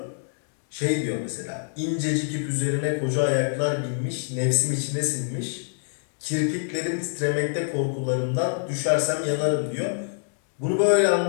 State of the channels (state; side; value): silent; right; digital silence